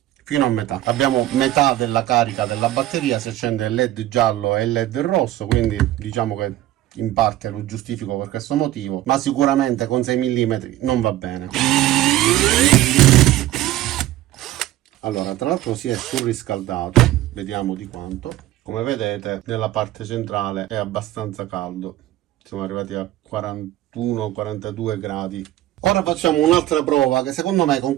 Fino a metà. Abbiamo metà della carica della batteria, si accende il LED giallo e il LED rosso, quindi diciamo che in parte lo giustifico per questo motivo, ma sicuramente con 6 mm non va bene. Allora, tra l'altro si è surriscaldato, vediamo di quanto. Come vedete nella parte centrale è abbastanza caldo, siamo arrivati a 41-42 gradi. Ora facciamo un'altra prova che secondo me con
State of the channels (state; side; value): quieter; left; 14.7 dB